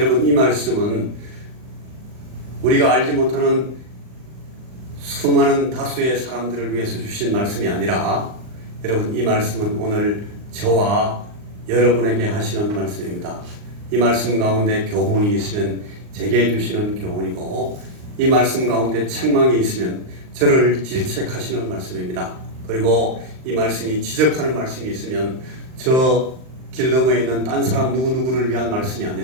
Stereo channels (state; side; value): late; left; 39 ms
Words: 이 말씀은 우리가 알지 못하는 수많은 다수의 사람들을 위해서 주신 말씀이 아니라 여러분 이 말씀은 오늘 저와 여러분에게 하시는 말씀입니다. 이 말씀 가운데 교훈이 있으면 제게 주시는 교훈이고 이 말씀 가운데 책망이 있으면 저를 질책하시는 말씀입니다. 그리고 이 말씀이 지적하는 말씀이 있으면 저 길 너머에 있는 딴 사람 누구누구를 위한 말씀이